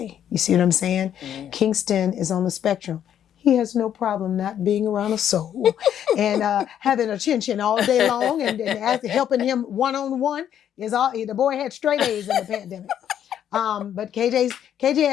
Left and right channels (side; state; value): right; quieter; 9.9 dB